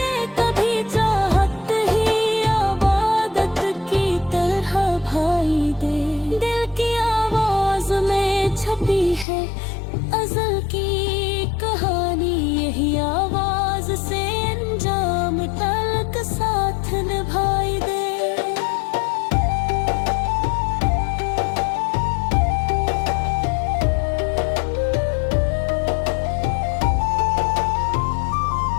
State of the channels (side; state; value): right; drops out; at 9.2 s